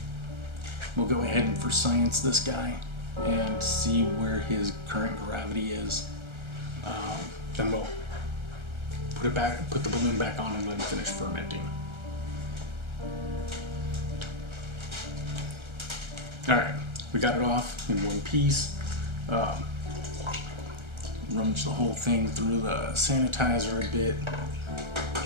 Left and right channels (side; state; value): left; late; 1.3 ms